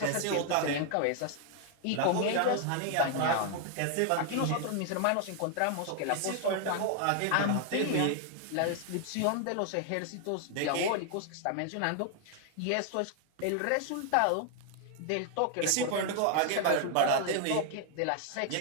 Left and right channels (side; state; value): both; different; correlation 0.00